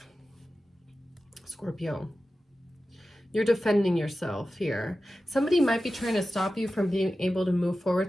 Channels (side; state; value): both; normal; correlation 0.94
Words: Scorpio. You're defending yourself here. Somebody might be trying to stop you from being able to move